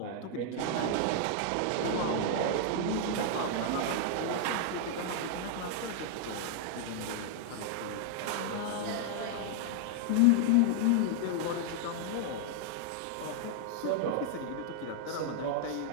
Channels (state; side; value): different; both; correlation 0.00